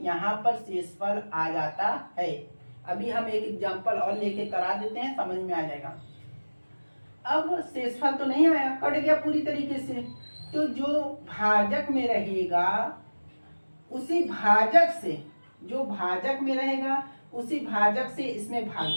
यहाँ पर शेषफल आ जाता है, अभी हम एक एग्जांपल और लेके करा देते हैं, समझ में आ जाएगा। अब शेषफल तो नहीं आया, कट गया पूरी तरीके से, तो जो भाजक में रहेगा उसी भाजक से, जो भाजक में रहेगा उसी भाजक से इसमें भाग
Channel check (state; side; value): inverted; both; correlation -1.00